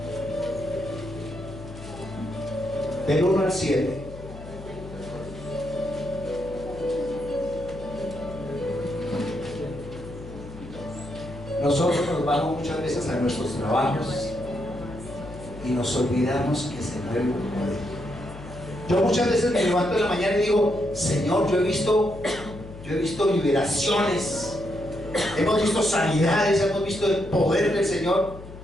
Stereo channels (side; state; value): left; noise; hum, 14 dB below the sound